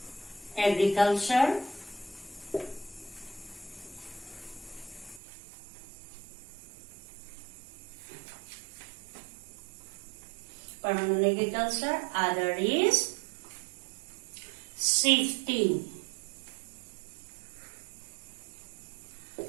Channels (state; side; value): drops out; left; at 5.2 s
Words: agriculture. Permanent agriculture. Other is shifting